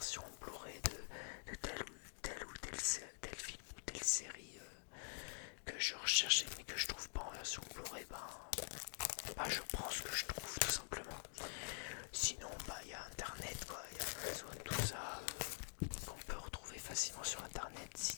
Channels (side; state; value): right; silent; digital silence